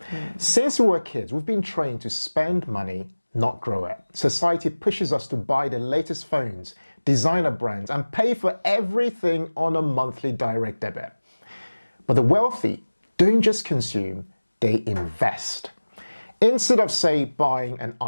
Since we were kids, we've been trained to spend money, not grow it. Society pushes us to buy the latest phones, designer brands, and pay for everything on a monthly direct debit. But the wealthy don't just consume, they invest. Instead of, say, buying an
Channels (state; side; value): inverted; both; correlation -1.00